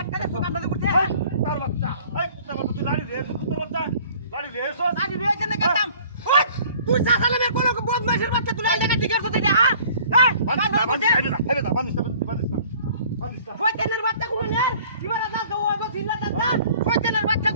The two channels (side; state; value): both; inverted; correlation -0.52